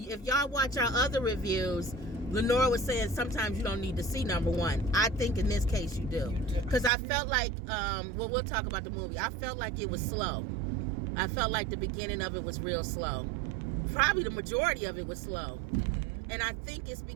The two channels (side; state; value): left; drops out; at 6.9 s